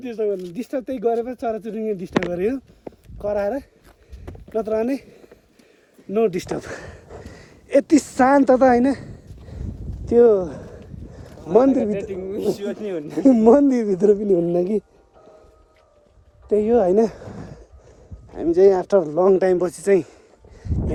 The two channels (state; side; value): identical; both; correlation 1.00